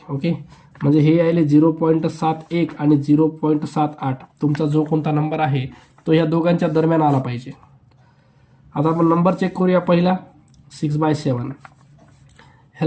ओके, म्हणजे हे यायले 0.71 आणि 0.78. तुमचा जो कोणता नंबर आहे तो ह्या दोघांच्या दरम्यान आला पाहिजे. आता आपण नंबर चेक करूया. पहिला 6/7,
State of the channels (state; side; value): identical; both; correlation 1.00